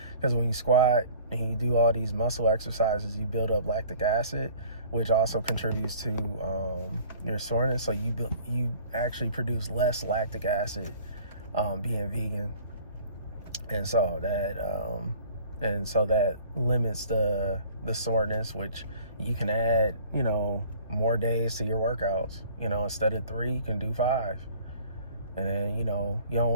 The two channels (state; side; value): inverted; both; correlation -0.51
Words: Because when you squat and you do all these muscle exercises, you build up lactic acid, which also contributes to your soreness. So you actually produce less lactic acid being vegan, and so that limits the soreness, which you can add more days to your workouts. Instead of 3, you can do 5. And then you don't